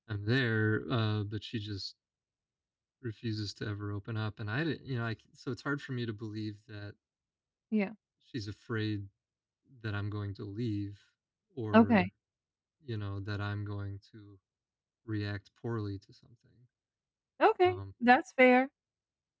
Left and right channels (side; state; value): both; identical; correlation 1.00